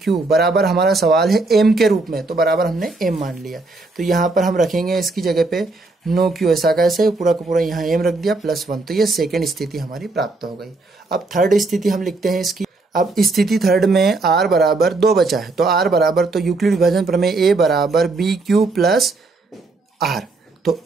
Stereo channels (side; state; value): left; quieter; 3.4 dB